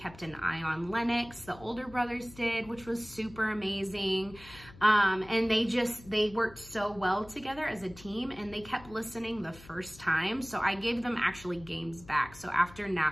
an eye on Lennox, the older brothers did, which was super amazing. And they worked so well together as a team, and they kept listening the first time. So I gave them actually games back. So after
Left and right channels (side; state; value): left; noise; hum, 20 dB below the sound